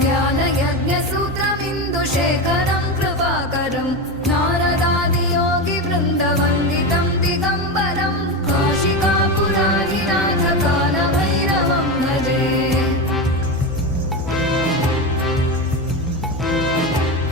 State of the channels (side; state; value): both; normal; correlation 0.18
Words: ज्ञानयज्ञसूत्रमिन्दुशेखरं कृपाकरं नारदादियोगिवृन्दवन्दितं दिगम्बरं काशिकापुराधिनाथकालभैरवं भजे।